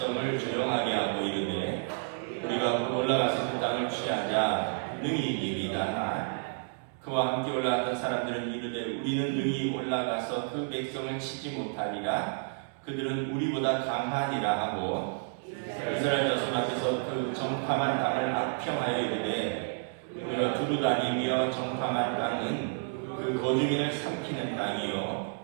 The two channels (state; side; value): silent; left; digital silence